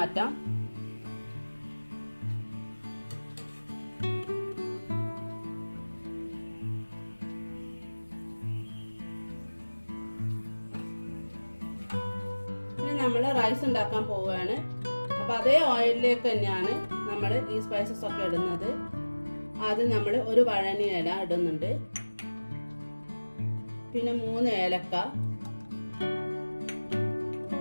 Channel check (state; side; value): inverted; both; correlation -1.00